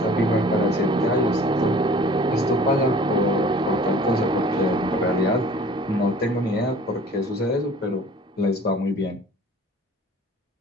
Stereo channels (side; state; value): both; normal; correlation 0.48